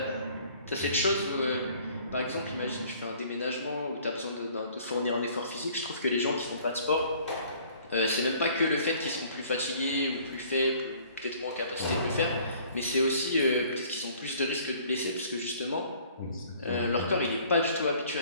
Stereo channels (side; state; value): both; inverted; correlation -0.55